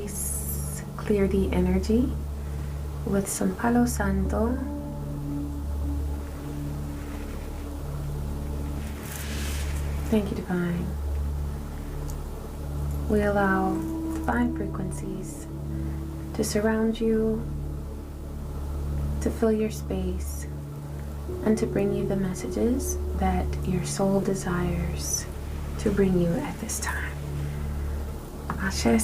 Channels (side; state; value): both; identical; correlation 1.00